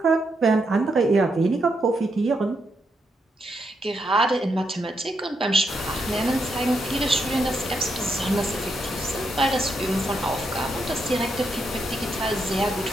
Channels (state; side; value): normal; both; correlation 0.80